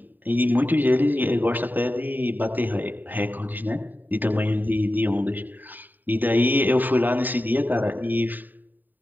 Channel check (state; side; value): late; left; 0.088 ms